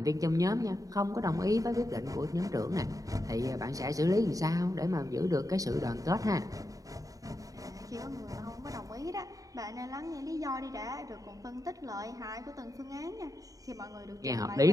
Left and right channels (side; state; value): left; late; 0.17 ms